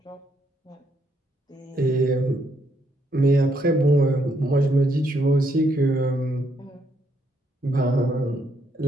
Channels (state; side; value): normal; both; correlation 0.74